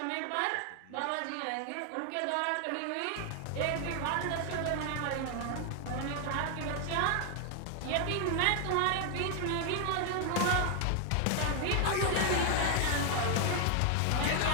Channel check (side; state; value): both; different; correlation 0.00